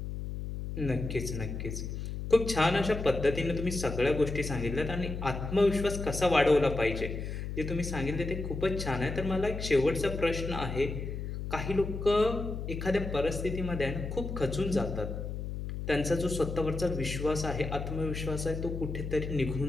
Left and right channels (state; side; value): noise; left; hum, 5 dB below the sound